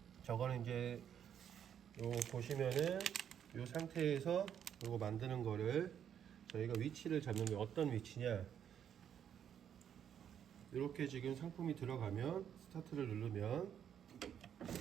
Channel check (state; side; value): quieter; left; 9.0 dB